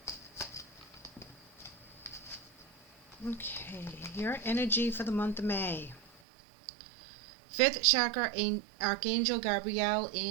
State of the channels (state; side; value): drops out; left; at 6.2 s